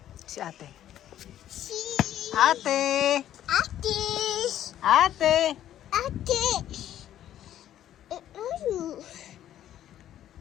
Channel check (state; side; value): quieter; right; 11.6 dB